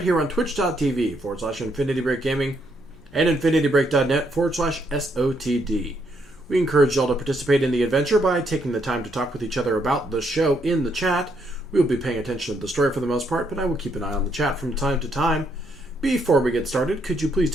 here on twitch.tv/Infinity Break Gaming and infinitybreak.net/SotD. We encourage y'all to participate in the adventure by taking the time to talk with each other about the show in the chat. We will be paying attention to the story for the most part, but I will keep an eye on the chat from time to time. Before we get started, could you please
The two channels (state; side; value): normal; both; correlation 0.74